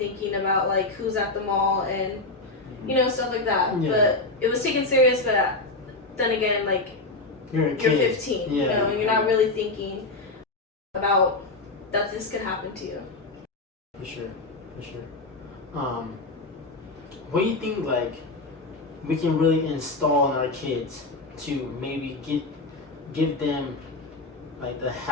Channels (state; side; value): quieter; right; 3.2 dB